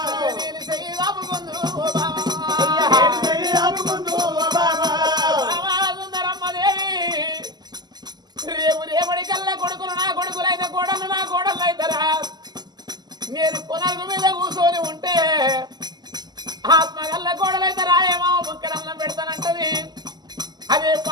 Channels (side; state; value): left; late; 0.20 ms